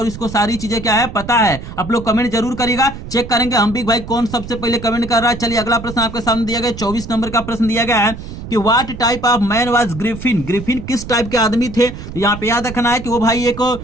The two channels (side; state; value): right; noise; rumble, 11 dB below the sound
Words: और इसको सारी चीजें क्या है पता है। आप लोग कमेंट जरूर करिएगा, चेक करेंगे हम भी भाई कौन सबसे पहले कमेंट कर रहा है। चलिए अगला प्रश्न आपके सामने दिया गया, 24 नंबर का प्रश्न दिया गया है कि what type of man was Griffin. Griffin किस टाइप के आदमी थे। तो यहाँ पे याद रखना है कि वो भाई एक